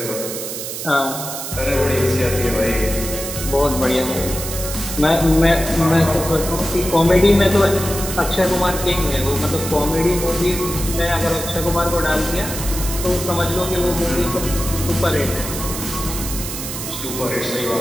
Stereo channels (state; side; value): noise; right; hiss, 7 dB below the sound